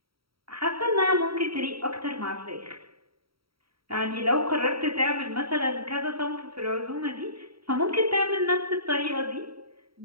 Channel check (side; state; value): left; late; 0.75 ms